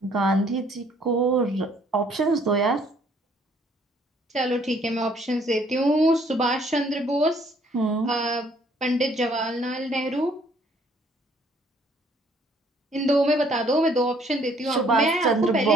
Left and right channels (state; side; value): normal; both; correlation 0.63